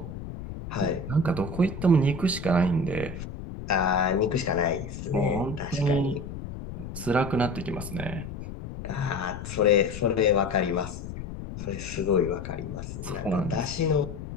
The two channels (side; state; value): left; noise; rumble, 9 dB below the sound